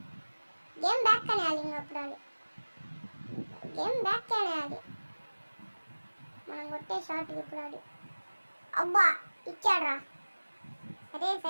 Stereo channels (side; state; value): both; inverted; correlation -1.00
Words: గేమ్ బ్యాక్ అనేయాలి. ఇంకా అప్పుడు ఆడు గేమ్ బ్యాక్ అనేయాలి. మనం కొట్టే షార్ట్ ఇప్పుడు ఆడు. అబ్బా ఇచ్చాడురా. సరే